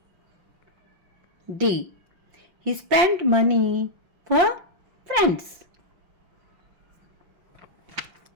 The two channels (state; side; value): late; left; 5.7 ms